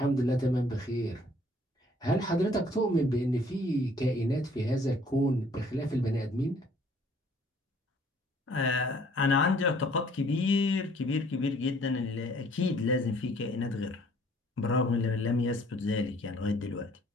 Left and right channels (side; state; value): both; normal; correlation 0.59